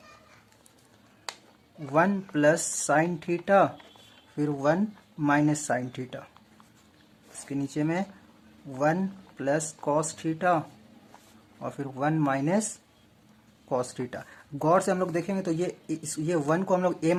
1 प्लस साइन थीटा फिर 1 माइनस साइन थीटा। इसके नीचे में 1 प्लस कॉस थीटा और फिर 1 माइनस कॉस थीटा। गौर से हम लोग देखेंगे तो ये 1 को हम लोग a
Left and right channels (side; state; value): both; identical; correlation 1.00